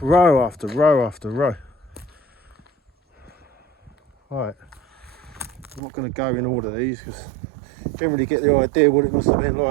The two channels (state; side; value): drops out; left; at 5.8 s